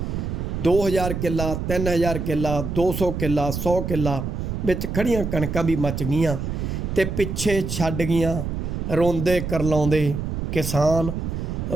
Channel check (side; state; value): right; noise; rumble, 3 dB below the sound